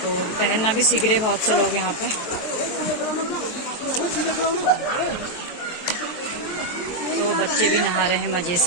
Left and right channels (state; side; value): late; right; 23 ms